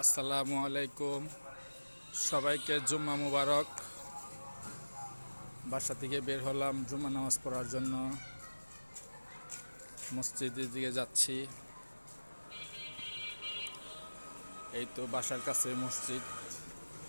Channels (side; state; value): both; inverted; correlation -1.00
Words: আসসালামু আলাইকুম। সবাইকে জুম্মা মুবারক। বাসা থেকে বের হলাম জুম্মা নামাজ পড়ার জন্য। মসজিদের দিকে যাচ্ছি। এই তো বাসার কাছে মসজিদ।